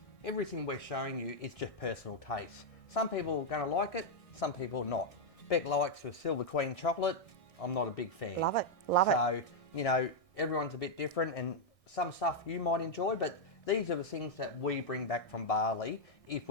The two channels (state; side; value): late; right; 1.6 ms